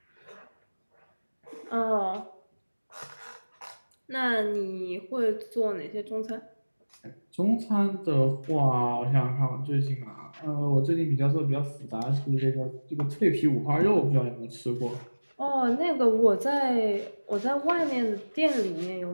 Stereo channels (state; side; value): inverted; both; correlation -1.00